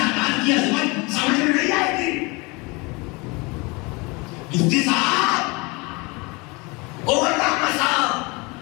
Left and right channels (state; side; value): quieter; right; 26.8 dB